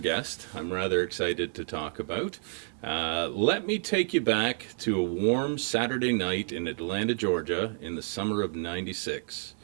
I'm rather excited to talk about. Let me take you back to a warm Saturday night in Atlanta, Georgia in the summer of '96.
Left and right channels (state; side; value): silent; left; digital silence